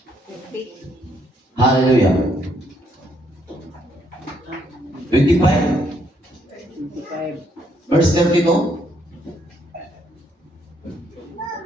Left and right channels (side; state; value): both; normal; correlation 0.72